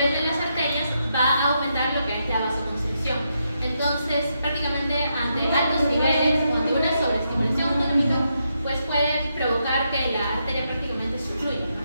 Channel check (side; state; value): both; inverted; correlation -0.81